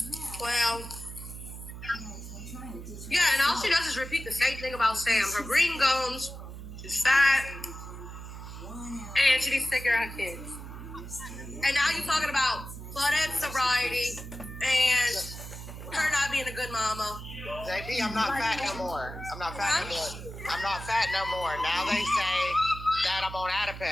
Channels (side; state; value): right; noise; hum, 11 dB below the sound